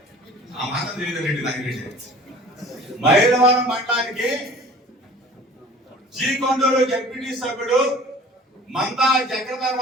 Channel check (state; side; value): normal; both; correlation 0.46